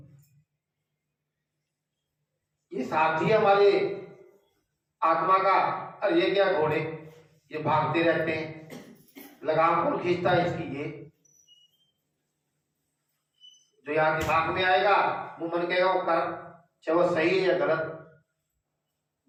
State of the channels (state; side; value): identical; both; correlation 1.00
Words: ये साथी हमारे आत्मा का। और ये क्या घोड़े, ये भागते रहते हैं, लगाम कौन खींचता है इसकी? ये जो यहाँ दिमाग में आएगा, वो मन कहेगा वो कर, चाहे वो सही है या गलत,